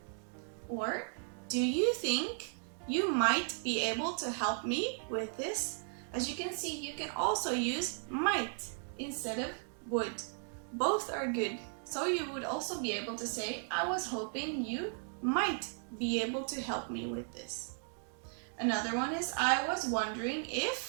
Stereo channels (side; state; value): left; silent; 54 dB below the other